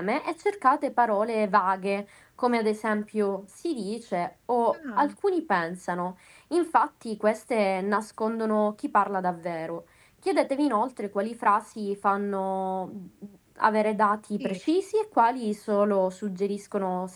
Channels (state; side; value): identical; both; correlation 1.00